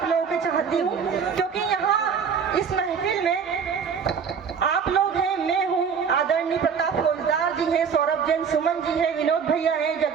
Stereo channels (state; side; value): quieter; left; 6.6 dB